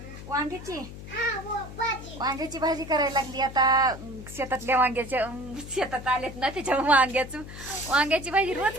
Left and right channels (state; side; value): noise; left; hum, 13 dB below the sound